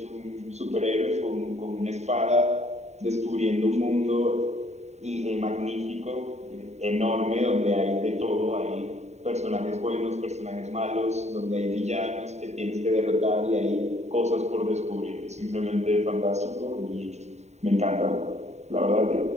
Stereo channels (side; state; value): left; late; 0.32 ms